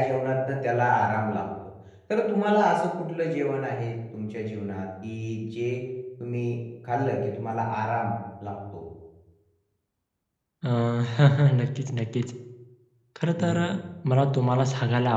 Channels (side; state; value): both; identical; correlation 1.00